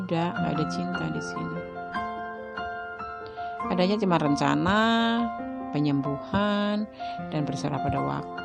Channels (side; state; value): both; identical; correlation 1.00